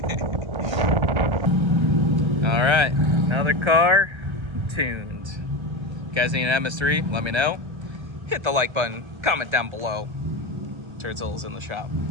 have. All right, another car tuned. You guys need an MS3? Let me know. Hit the like button, comment down below. Turtle's in the shop.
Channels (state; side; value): late; left; 1.3 ms